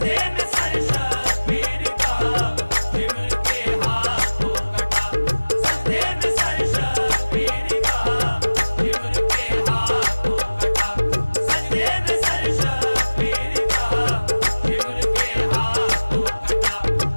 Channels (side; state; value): both; inverted; correlation -1.00